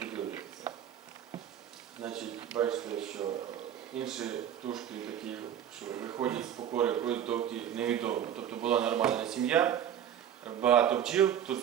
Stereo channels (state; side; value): quieter; left; 9.9 dB